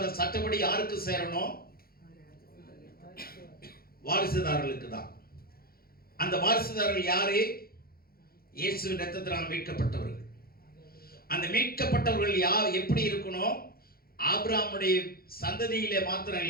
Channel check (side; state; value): right; late; 0.44 ms